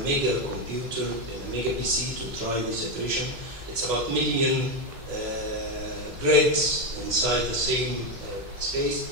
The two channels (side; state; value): left; late; 3.0 ms